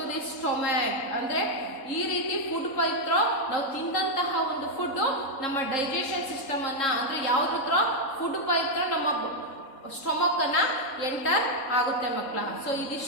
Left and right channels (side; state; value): right; late; 3.7 ms